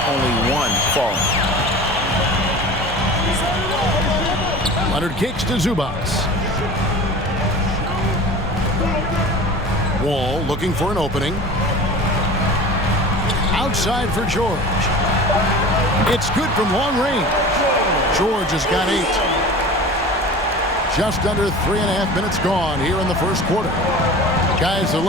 only 1 falling. Leonard kicks to Zubac. Wall looking for an opening. Outside for George. It's good from long range. George has got 8. Just under 3.5 minutes gone here in the first quarter. Guys are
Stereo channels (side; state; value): both; normal; correlation 0.37